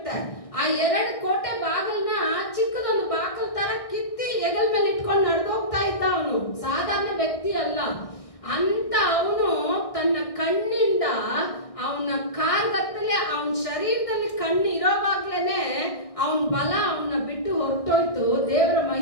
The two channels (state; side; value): late; right; 1.6 ms